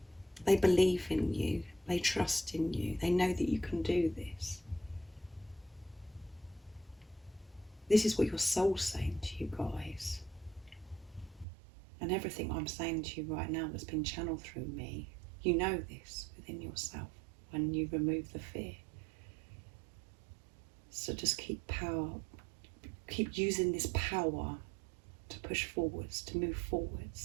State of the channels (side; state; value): left; drops out; at 11.5 s